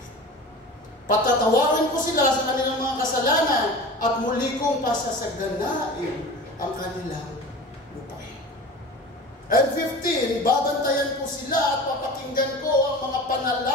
Patatawarin ko sila sa kanilang mga kasalanan at muli kong pasasaganain ang kanilang lupain. And 15, babantayan ko sila at papakinggan ko ang mga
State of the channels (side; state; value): both; normal; correlation 0.35